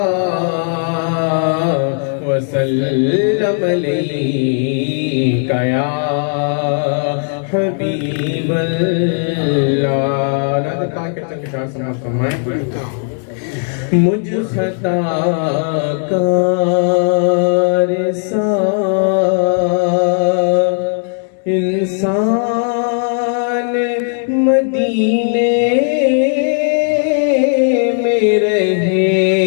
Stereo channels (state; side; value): silent; right; 55 dB below the other